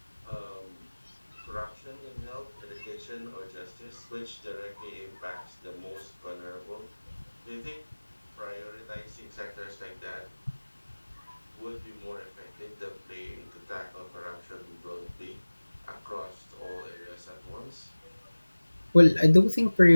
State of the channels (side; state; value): both; inverted; correlation -1.00